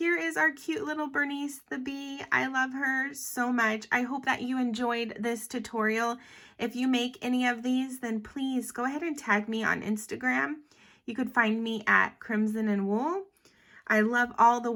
is our cute little Bernice the Bee. I love her so much. I hope that you enjoyed this tutorial. If you make any of these, then please go ahead and tag me on Instagram. You could find me at Crimson and Wool. I love all the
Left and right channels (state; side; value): identical; both; correlation 1.00